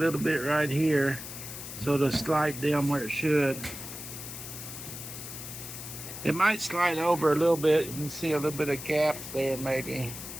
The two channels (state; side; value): noise; left; hiss, 10 dB below the sound